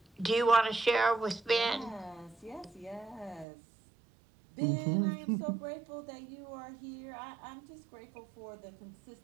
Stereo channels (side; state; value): left; drops out; at 3.5 s